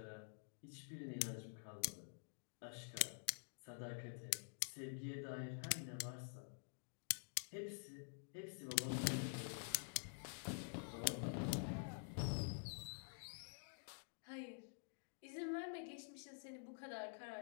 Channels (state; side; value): silent; right; digital silence